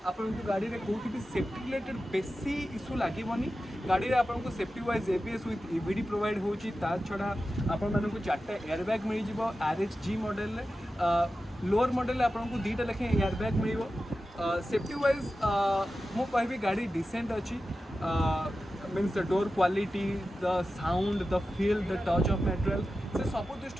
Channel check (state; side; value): normal; both; correlation 0.93